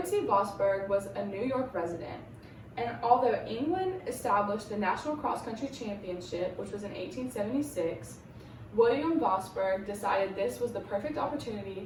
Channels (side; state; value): both; identical; correlation 1.00